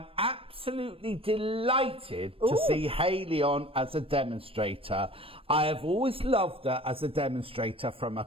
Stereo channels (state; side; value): late; left; 0.27 ms